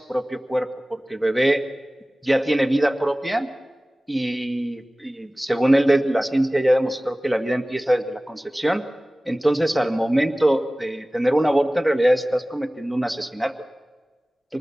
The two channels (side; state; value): both; normal; correlation 0.98